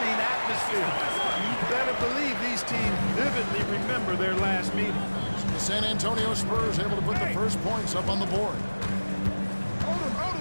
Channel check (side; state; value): both; inverted; correlation -1.00